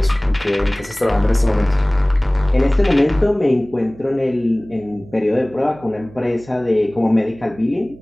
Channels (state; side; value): noise; right; hum, 21 dB below the sound